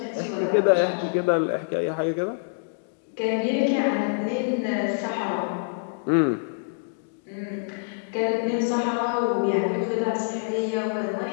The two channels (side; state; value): right; silent; digital silence